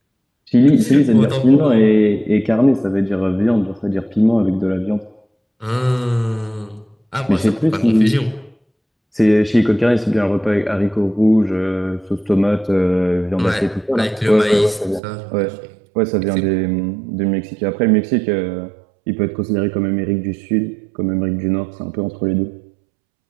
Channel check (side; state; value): left; drops out; at 15.0 s